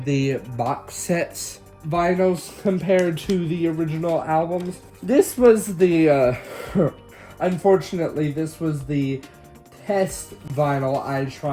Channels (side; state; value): both; identical; correlation 1.00